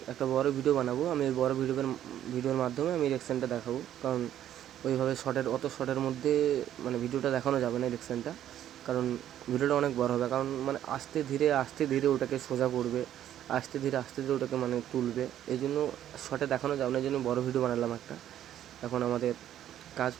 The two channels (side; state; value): left; quieter; 11.3 dB